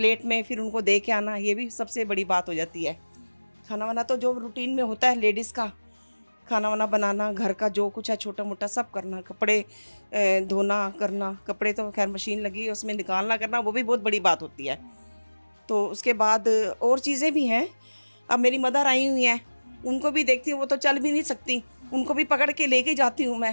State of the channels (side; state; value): both; inverted; correlation -1.00